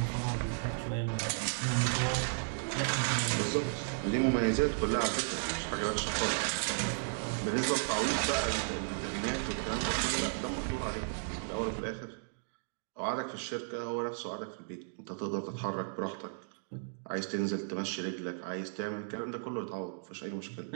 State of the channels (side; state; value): left; silent; digital silence